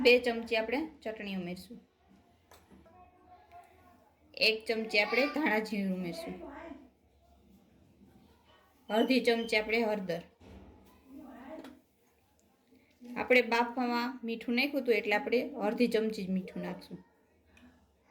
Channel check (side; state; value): both; identical; correlation 1.00